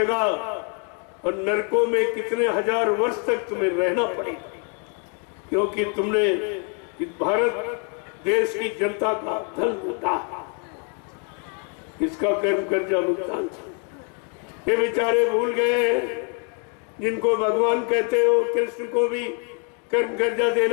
और नरकों में कितने हजार वर्ष तक तुम्हें रहना पड़ेगा, क्योंकि तुमने इस भारत देश की जनता का धन लूटा, इसका कर्म कर्जा भुगतान। ये बेचारे भूल गए, जिनको भगवान कहते हो, कृष्ण को भी कर्म कर्जा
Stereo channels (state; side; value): quieter; right; 39.7 dB